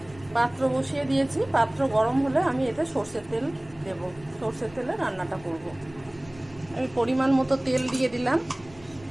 পাত্র বসিয়ে দিয়েছি, পাত্র গরম হলে আমি এতে সর্ষের তেল দেব, সর্ষের তেলে রান্নাটা করব। আমি পরিমাণ মতো তেল দিয়ে দিলাম,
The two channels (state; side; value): noise; left; rumble, 23 dB below the sound